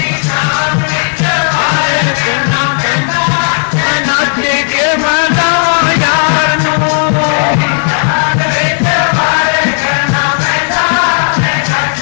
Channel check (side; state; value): right; silent; 61 dB below the other